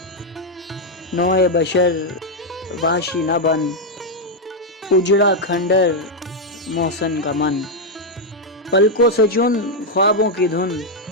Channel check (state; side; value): normal; both; correlation 0.01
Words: نوع بشر وحشی نہ بن، اجڑا کھنڈر محسن کا من، پلکوں سے چن خوابوں کی دھن،